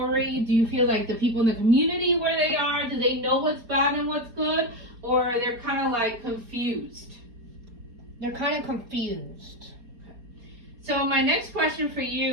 do you feel like the people in the community where they are, do they know what's bad and what's good? Or they're kind of like confused? They're kind of confused. Okay. So my next question for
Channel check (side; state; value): left; late; 4.3 ms